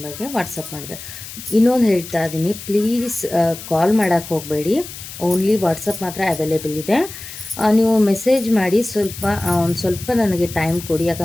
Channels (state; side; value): noise; left; hiss, 13 dB below the sound